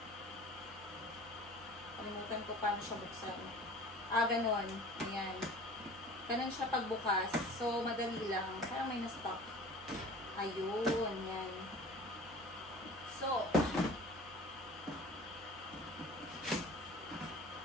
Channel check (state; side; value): normal; both; correlation 0.43